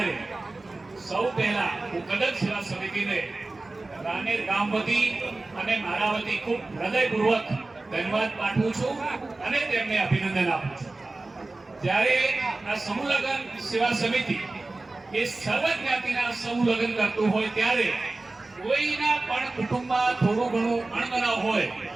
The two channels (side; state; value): left; quieter; 3.2 dB